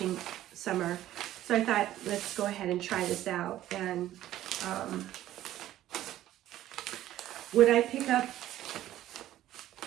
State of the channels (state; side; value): quieter; left; 13.5 dB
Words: summer. So I thought, let's go ahead and try this out. And would I pick up